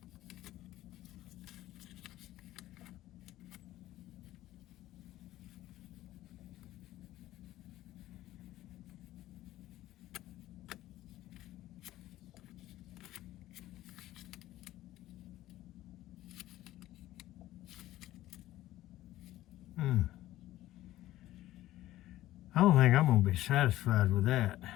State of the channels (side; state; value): right; quieter; 15.1 dB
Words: I don't think I'm going to be satisfied with that.